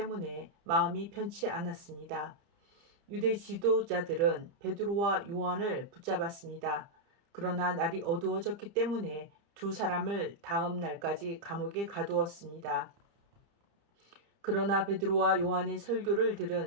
마음이 편치 않았습니다. 유대 지도자들은 베드로와 요한을 붙잡았습니다. 그러나 날이 어두워졌기 때문에 두 사람을 다음 날까지 감옥에 가두었습니다. 그러나 베드로와 요한의 설교를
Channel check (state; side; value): late; left; 30 ms